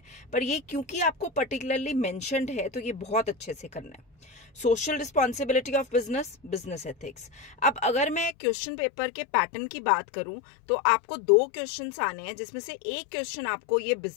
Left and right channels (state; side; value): drops out; right; at 8.3 s